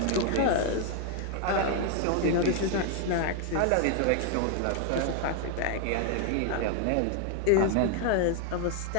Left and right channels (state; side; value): different; both; correlation 0.00